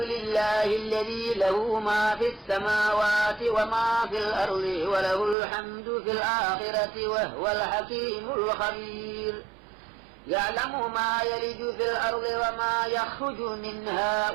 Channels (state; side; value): drops out; left; at 5.4 s